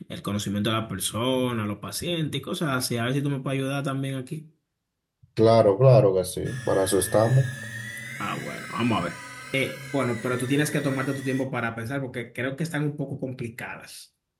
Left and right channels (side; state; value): both; identical; correlation 1.00